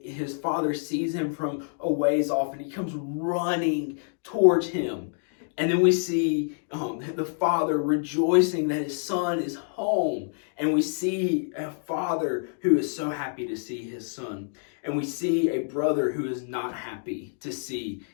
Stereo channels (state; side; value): silent; right; digital silence